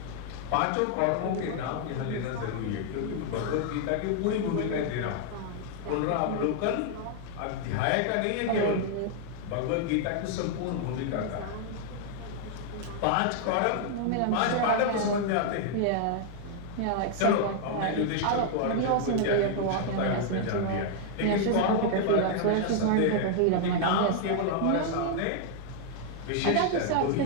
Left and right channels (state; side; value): different; both; correlation 0.00